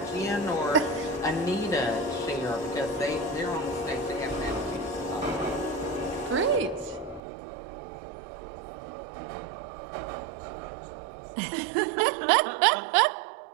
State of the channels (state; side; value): drops out; left; at 7.2 s